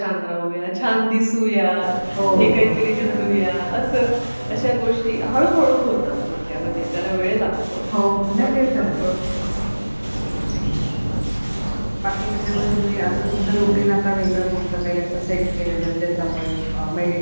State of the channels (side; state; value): both; inverted; correlation -1.00